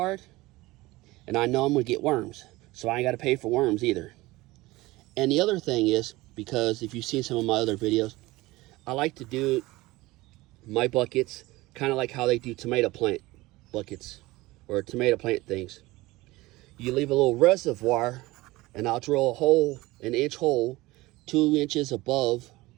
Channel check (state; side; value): quieter; left; 19.8 dB